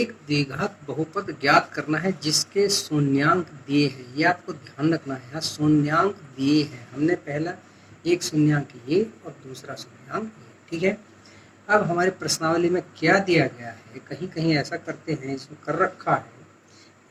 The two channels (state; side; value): identical; both; correlation 1.00